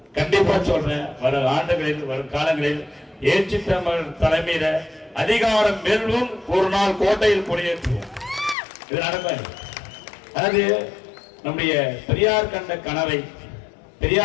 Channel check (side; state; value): right; drops out; at 8.6 s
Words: கண்டிப்பா சொல்றேன், வரும் ஆண்டுகளில் வரும் காலங்களில் ஏற்றி தமிழ் தலைமையில அதிகாரம் வெல்லும், ஒரு நாள் கோட்டையில் கொடியேற்றுவோம். இது நடக்கும். அதாவது நம்முடைய பெரியார் கண்ட கனவை